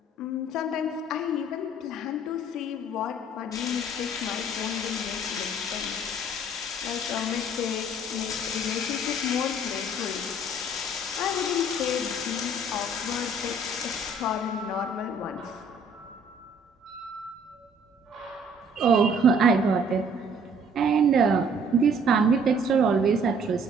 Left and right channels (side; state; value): both; normal; correlation 0.58